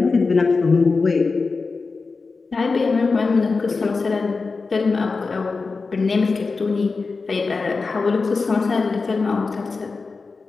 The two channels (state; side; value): quieter; right; 4.3 dB